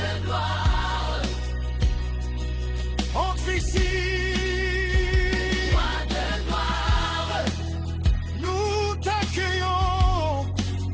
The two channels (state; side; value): identical; both; correlation 1.00